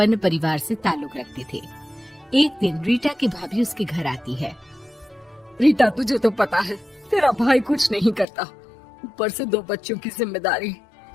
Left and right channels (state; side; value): drops out; right; at 8.2 s